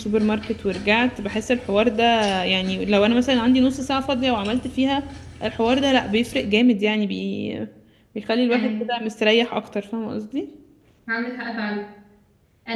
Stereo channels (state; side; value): identical; both; correlation 1.00